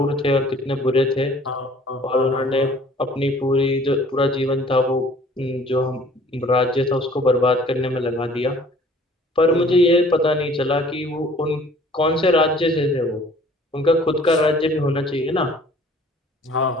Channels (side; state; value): both; normal; correlation 0.53